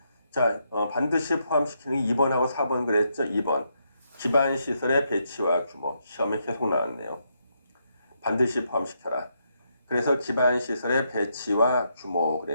자, 반드시 포함시키는 게 2번하고 4번 그랬죠? 2번. 기반 시설의 배치와 규모. 시험에 계속 나왔네요. 반드시 포함시켜라. 그래서 기반 시설의 배치와 규모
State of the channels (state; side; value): inverted; both; correlation -0.78